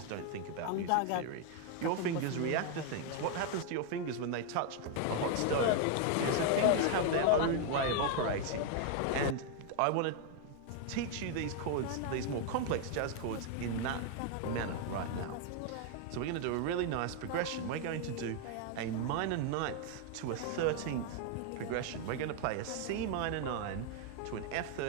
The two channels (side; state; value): both; different; correlation 0.00